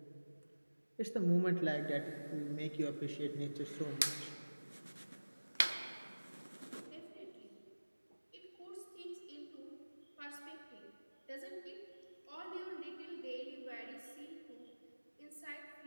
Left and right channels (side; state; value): both; inverted; correlation -1.00